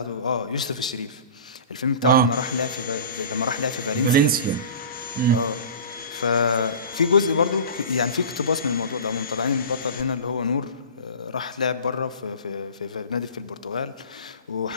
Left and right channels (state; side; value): inverted; both; correlation -0.37